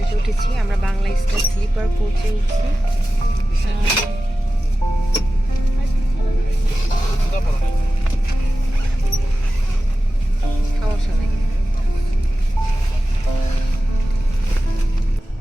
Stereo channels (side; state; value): both; normal; correlation 0.95